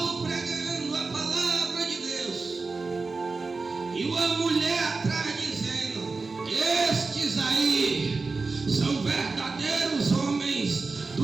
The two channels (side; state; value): left; quieter; 4.0 dB